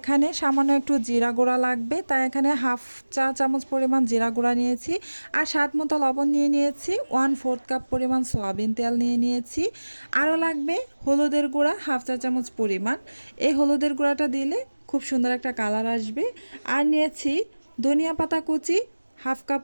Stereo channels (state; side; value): inverted; both; correlation -1.00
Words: সামান্য একটু জিরা গুঁড়া লাগবে, তাই এখানে হাফ চা চামচ পরিমাণ জিরা গুঁড়া নিয়েছি। আর স্বাদ মতো লবণ নিয়ে নিয়েছি। 1/4 কাপ পরিমাণ সয়াবিন তেল নিয়ে নিয়েছি। আরও লাগবে হলুদের গুঁড়া হাফ চা চামচ পরিমাণ। এই হলুদের গুঁড়াটা দিলে খুব সুন্দর একটা কালার আসবে। আর নিয়েছি ধনিয়া পাতা কুচি হাফ কাপ